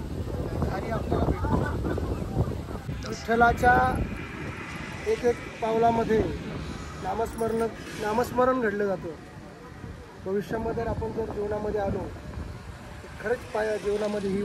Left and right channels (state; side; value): identical; both; correlation 1.00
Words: विठ्ठलाच्या एक पावलामध्ये नामस्मरण घडलं जातं. भविष्यामध्ये आपण जर जीवनामध्ये आलो तर खरंच जीवनामध्ये ही